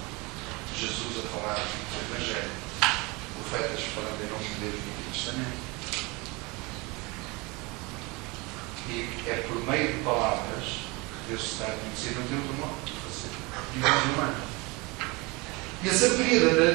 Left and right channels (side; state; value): left; quieter; 25.9 dB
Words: Jesus a falar do Evangelho, profetas falando em nome de Deus no Antigo Testamento. E é por meio de palavras que Deus está a conhecer, não tem outro modo de fazer, de modo humano. E a sabedoria